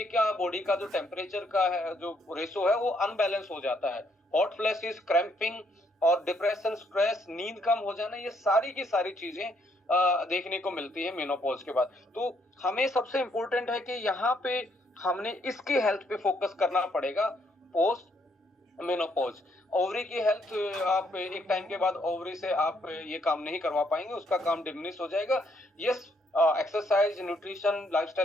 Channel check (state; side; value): normal; both; correlation 0.71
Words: का बॉडी का जो टेम्परेचर का है, जो रेशो है, वो अनबैलेंस हो जाता है। हॉट फ्लैशेस, क्रैम्पिंग और डिप्रेशन, स्ट्रेस, नींद कम हो जाना, ये सारी की सारी चीजें देखने को मिलती है मेनोपॉज के बाद। तो हमें सबसे इंपॉर्टेंट है कि यहाँ पे हमने इसकी हेल्थ पे फोकस करना पड़ेगा पोस्ट मेनोपॉज। ओवरी की हेल्थ आप एक टाइम के बाद ओवरी से आप ये काम नहीं करवा पाएंगे, उसका काम डिमिनिश हो जाएगा। Yes, exercise, nutrition,